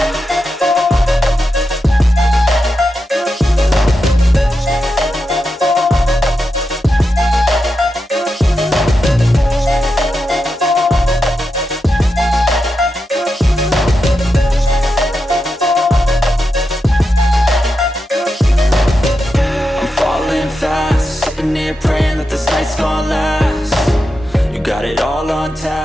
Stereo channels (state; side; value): normal; both; correlation 0.88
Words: Praying that this night's gonna last. You got it all on